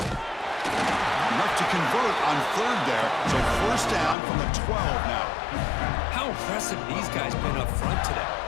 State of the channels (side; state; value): right; drops out; at 4.2 s